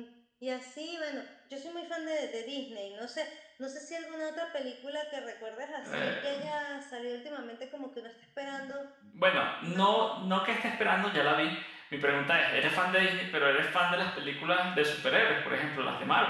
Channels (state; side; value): identical; both; correlation 1.00